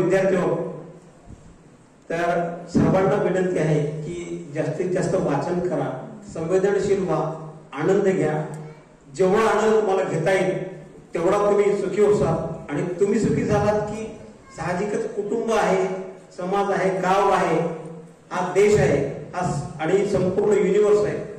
आहोत, तर सर्वांना विनंती आहे की जास्तीत जास्त वाचन करा, संवेदनशील व्हा, आनंद घ्या. जेवढा आनंद तुम्हाला घेता येईल तेवढा तुम्ही सुखी होसाल. आणि तुम्ही सुखी झालात की साहजिकच कुटुंब आहे, समाज आहे, गाव आहे, हा देश आहे, हा आणि संपूर्ण युनिवर्स आहे,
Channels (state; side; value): identical; both; correlation 1.00